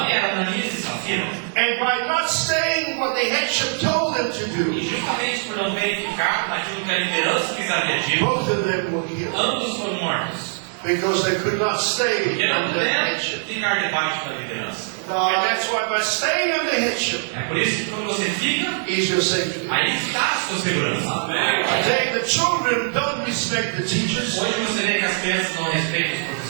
era Ananias e Safira. And by not staying what the headship told them to E do, justamente por não verificar naquilo que a liderança lhes havia dito, both of them were killed. ambos foram mortos. Because they could not stay Porque não under the puderam headship. ficar debaixo da liderança. And that's why by staying under headship É por isso que quando você fica, is your safety. aí está a sua segurança. Today the children don't respect the teachers. Hoje você vê que as crianças não respeitam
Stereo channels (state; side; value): silent; left; 64 dB below the other